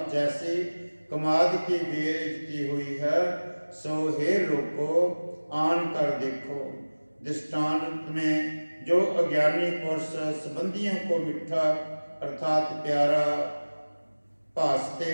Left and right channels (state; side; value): inverted; both; correlation -1.00